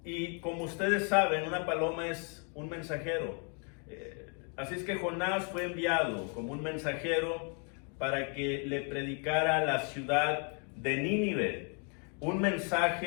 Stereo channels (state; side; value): quieter; right; 38.9 dB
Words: Y como ustedes saben, una paloma es un mensajero. Así es que Jonás fue enviado como un mensajero para que le predicara a la ciudad de Nínive un